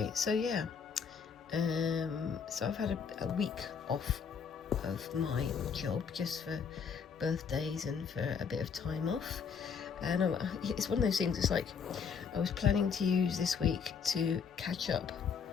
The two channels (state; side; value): quieter; right; 6.4 dB